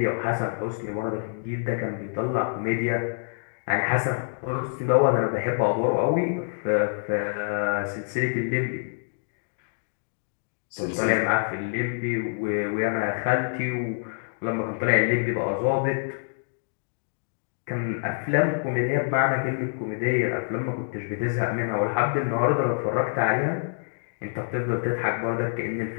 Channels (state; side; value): silent; right; digital silence